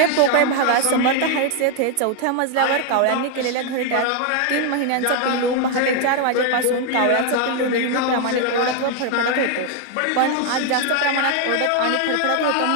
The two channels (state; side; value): different; both; correlation 0.00